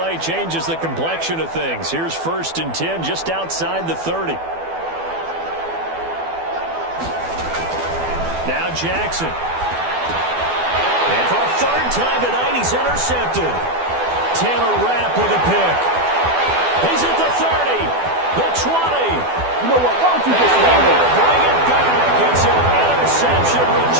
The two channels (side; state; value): left; late; 12 ms